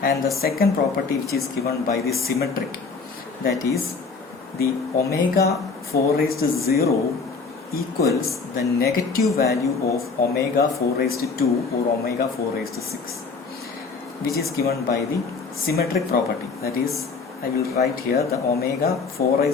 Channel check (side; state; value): right; quieter; 4.7 dB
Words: the second property, which is given by the symmetric, that is the omega 4 raised to 0 equals the negative value of omega 4 raised to 2 or omega 4 raised to 6, which is given by the symmetric property. That is, I will write here the omega 4